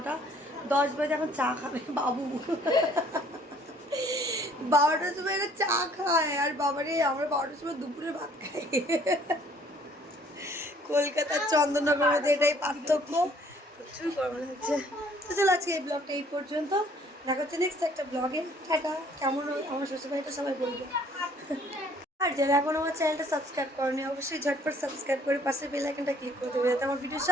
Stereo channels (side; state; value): both; normal; correlation 0.59